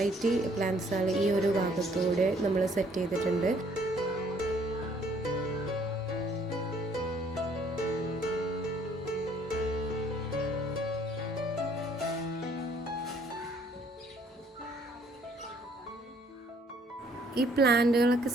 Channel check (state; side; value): normal; both; correlation 0.62